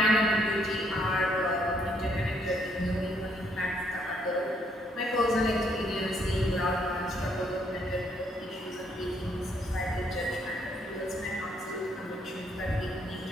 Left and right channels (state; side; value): normal; both; correlation 0.70